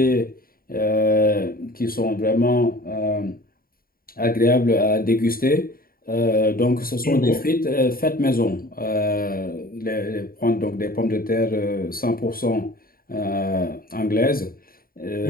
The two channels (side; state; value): right; late; 0.42 ms